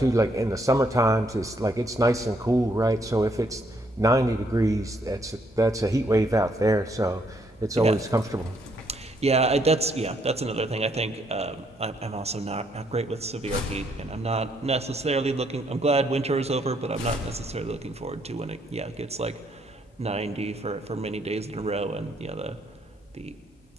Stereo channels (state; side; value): normal; both; correlation 0.71